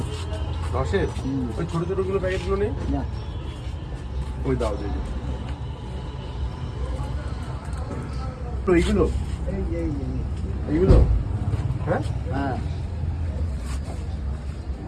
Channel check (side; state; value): both; identical; correlation 1.00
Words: 10-এর ওই ছোটো ছোটোগুলো প্যাকেটগুলো নেই? ওই দাও দেখি তো। এইগুলো এইগুলো হ্যাঁ।